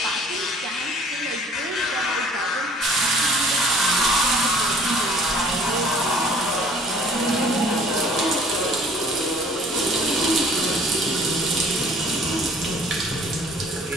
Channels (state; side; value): normal; both; correlation 0.54